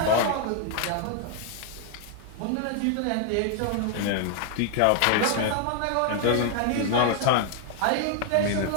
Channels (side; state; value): both; different; correlation 0.00